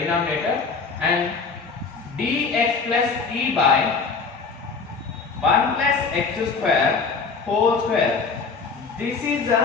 and dx plus e by 1 plus x square whole square. This is the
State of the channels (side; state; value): right; quieter; 4.8 dB